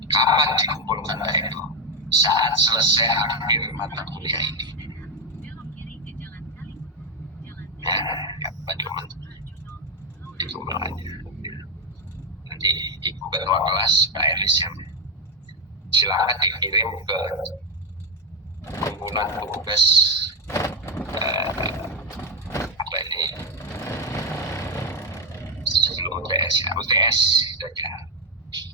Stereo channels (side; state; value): both; normal; correlation 0.08